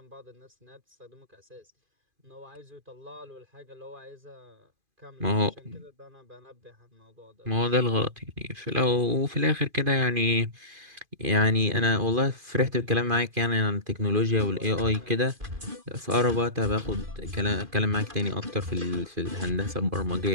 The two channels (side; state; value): left; late; 2.5 ms